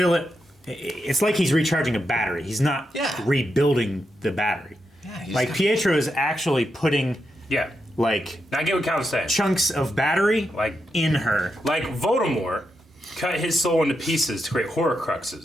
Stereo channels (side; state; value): both; normal; correlation 0.85